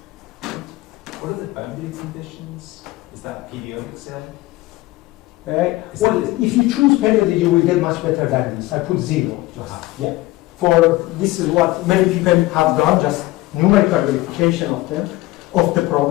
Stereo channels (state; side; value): quieter; right; 18.9 dB